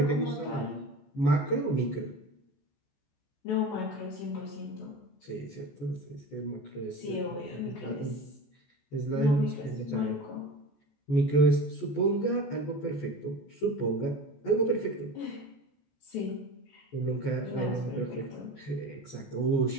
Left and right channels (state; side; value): late; right; 14 ms